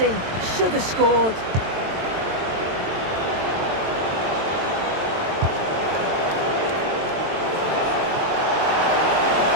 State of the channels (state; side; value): late; left; 22 ms